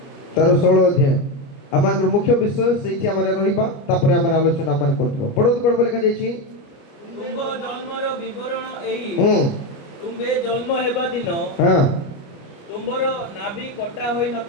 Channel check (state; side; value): late; right; 29 ms